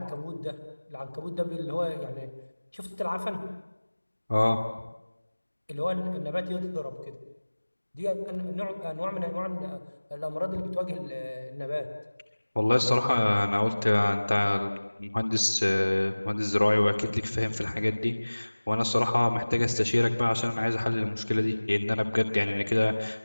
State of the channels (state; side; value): inverted; both; correlation -1.00